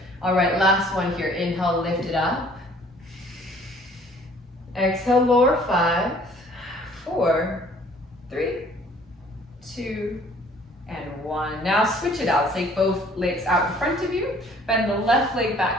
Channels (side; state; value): both; normal; correlation 0.56